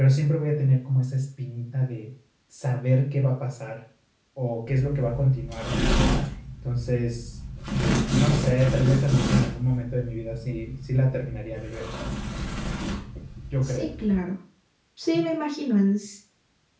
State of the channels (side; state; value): both; identical; correlation 1.00